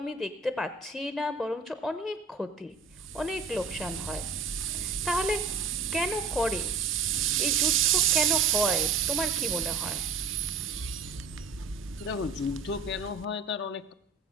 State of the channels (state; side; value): quieter; left; 5.0 dB